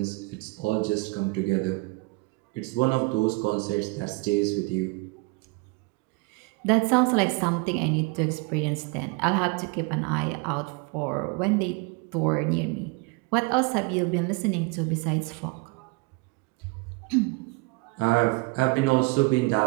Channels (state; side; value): quieter; left; 26.1 dB